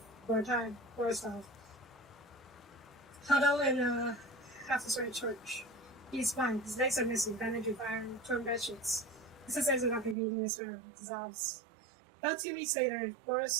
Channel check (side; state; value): left; drops out; at 10.2 s